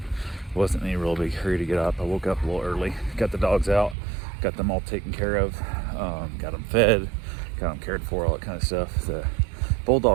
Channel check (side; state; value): left; drops out; at 4.0 s